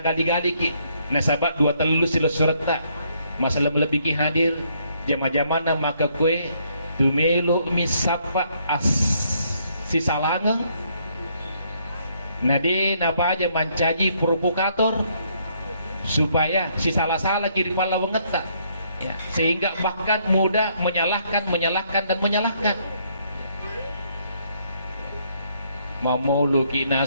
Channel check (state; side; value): inverted; both; correlation -0.70